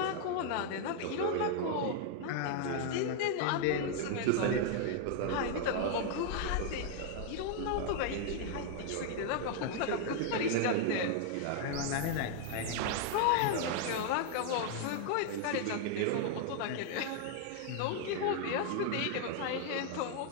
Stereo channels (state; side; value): different; both; correlation 0.00